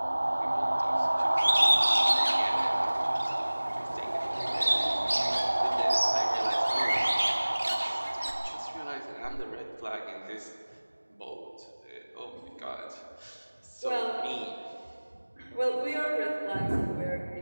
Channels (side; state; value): both; inverted; correlation -1.00